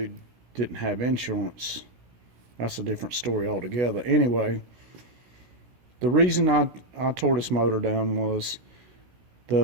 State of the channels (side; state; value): left; late; 16 ms